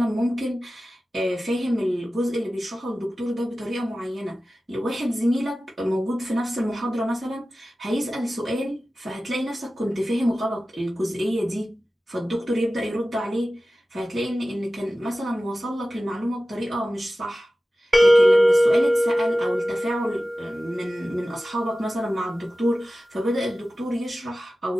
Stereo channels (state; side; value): normal; both; correlation 0.95